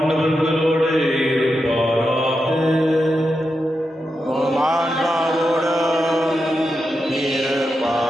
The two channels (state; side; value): normal; both; correlation 0.87